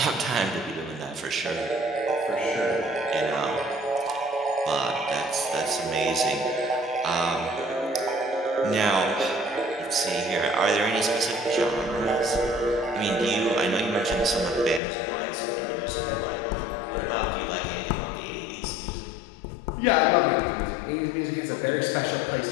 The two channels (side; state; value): right; drops out; at 14.8 s